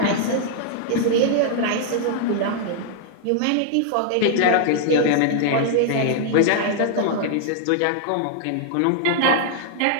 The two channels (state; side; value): different; both; correlation -0.01